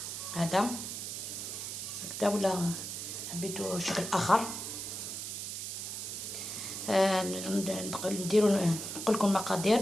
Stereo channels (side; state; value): right; noise; hiss, 6 dB below the sound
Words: هذا هكذا، ولا حبيتو شكل اخر. نديرو نقول لكم المقادير.